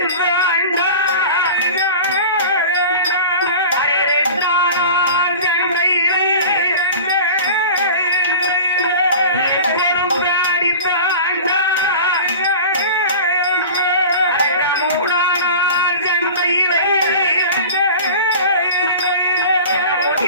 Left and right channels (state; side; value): inverted; both; correlation -0.36